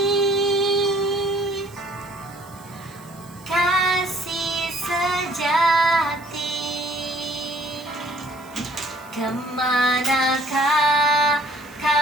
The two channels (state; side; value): noise; right; hiss, 24 dB below the sound